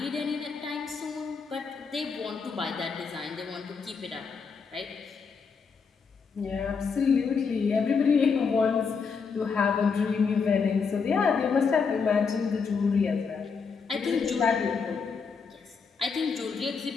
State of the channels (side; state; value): right; quieter; 5.5 dB